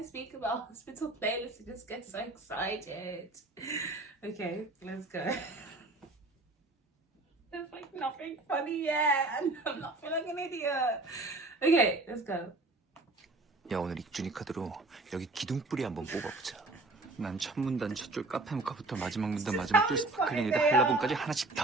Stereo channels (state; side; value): quieter; left; 3.0 dB